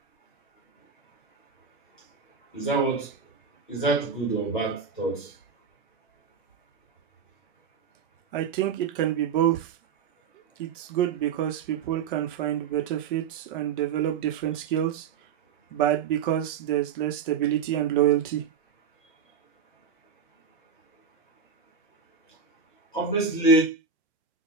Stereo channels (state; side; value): quieter; left; 6.5 dB